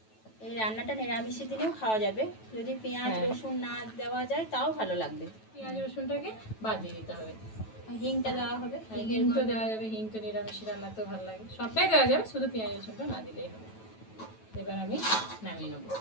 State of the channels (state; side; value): late; right; 9.2 ms